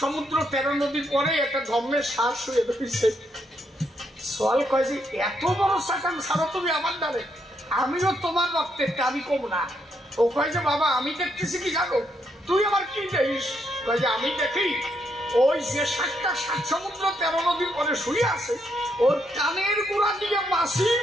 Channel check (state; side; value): normal; both; correlation 0.77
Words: সমুদ্র 13 নদীর পরে একটা ধর্মের শ্বাস হয়ে রয়েছে। সোয়াল কয় যে এত বড় চাটান ছাড়ো তুমি আমার দ্বারে, আমিও তোমার রক্তেরটা, আমি কম না। ও কয় যে বাবা আমি দেখতেছি কি জানো, তুই আমার কি দেখিস? কয় যে আমি দেখি ওই যে 7 সমুদ্র 13 নদীর পরে শুয়ে আছে, ওর কানের গোড়া দিয়ে মাসি